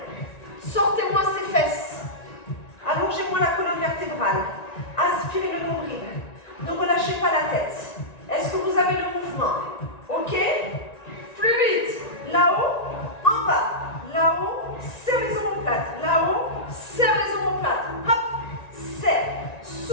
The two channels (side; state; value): right; late; 1.9 ms